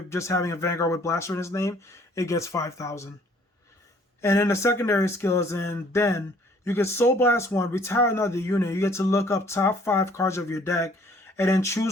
just having a vanguard with blaster in his name, it gets 5,000. And then the secondary skill is then you get Soul Blast 1, retire another unit. You get to look up top 5 cards of your deck and then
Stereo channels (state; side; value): normal; both; correlation 0.58